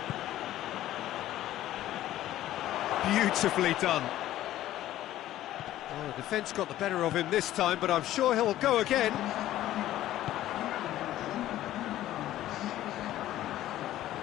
Beautifully done. Oh, the defence got the better of him this time, but I'm sure he'll go again.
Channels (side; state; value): right; quieter; 13.8 dB